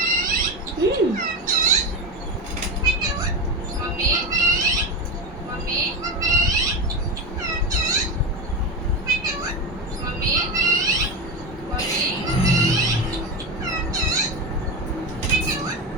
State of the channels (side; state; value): both; normal; correlation 0.19